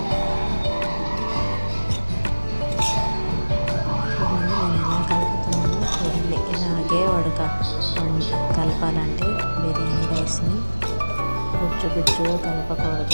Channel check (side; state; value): both; inverted; correlation -1.00